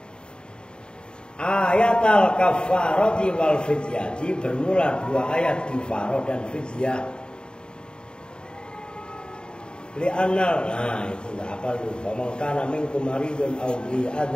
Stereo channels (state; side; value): late; right; 0.049 ms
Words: Ayatal kafarati wal fidyati bermula dua ayat kifarah dan fidyah. Li'anal nah itu enggak apa lu. Faman kana minkum maridun aw bi